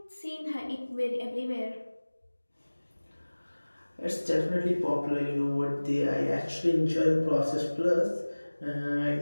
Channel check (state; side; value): inverted; both; correlation -1.00